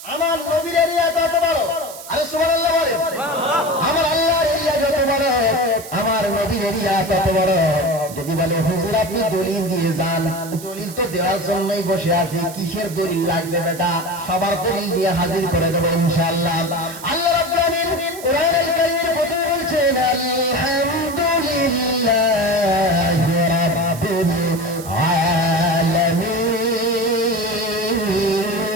আমার নবীর এরিয়া তত বড়। আরে সুবহানাল্লাহ বলে। আমার আল্লাহর এরিয়া যত বড় আমার নবীর এরিয়া তত বড়। যদি বলে হুজুর আপনি দলিল দিয়ে যান, দলিল তো দেওয়ার জন্যই বসে আছি, কিসের দলিল লাগবে বেটা? সবার দলিল দিয়ে হাজির করে দেবো ইনশাআল্লাহ। আল্লাহ রাব্বুল আলামিন কোরআনুল কারীমের মধ্যে বলছেন আলহামদুলিল্লাহি রাব্বিল আলামিন।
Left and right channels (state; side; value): noise; right; hiss, 14 dB below the sound